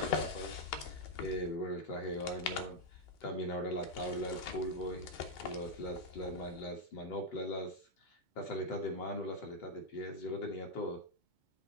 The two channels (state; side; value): late; right; 2.2 ms